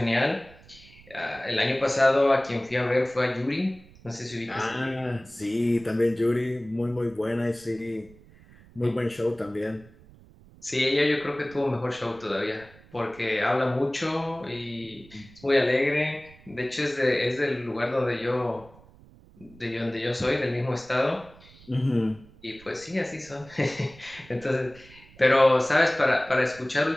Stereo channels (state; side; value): noise; right; rumble, 24 dB below the sound